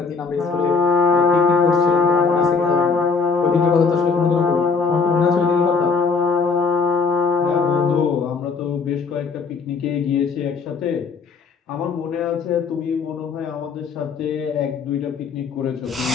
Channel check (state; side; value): quieter; right; 4.9 dB